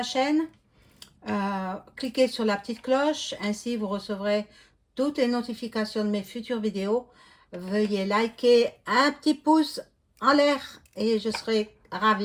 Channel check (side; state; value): both; identical; correlation 1.00